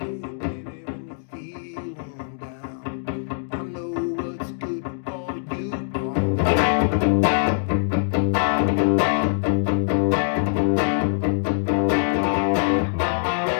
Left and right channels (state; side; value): silent; right; digital silence